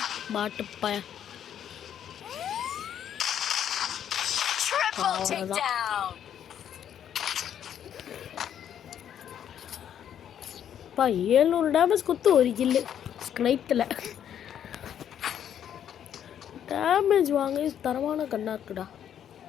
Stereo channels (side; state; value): right; quieter; 9.6 dB